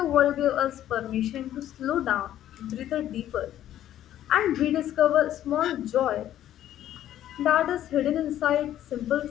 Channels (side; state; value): right; quieter; 12.0 dB